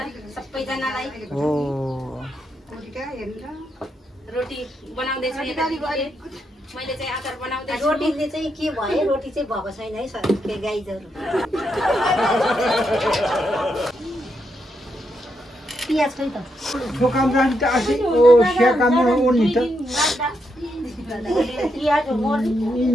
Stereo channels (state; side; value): normal; both; correlation 0.81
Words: सबैजनालाई रोटी बनाउँदैछु मैले चाहिँ अचार बनाउँदैछु रोटीले चाहिँ के भयो रोटी चाहिँ भएको छैन है सर के गाईजहरू पियाज खै त ठोकाम राख्नु त आसी ओ सेकाम ओर्नी त पियाज हो